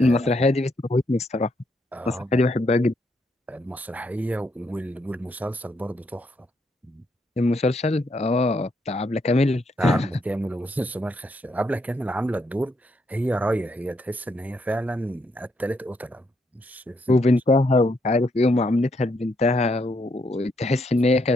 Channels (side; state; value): both; normal; correlation 0.76